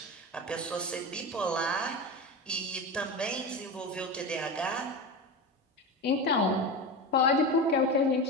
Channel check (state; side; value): normal; both; correlation 0.24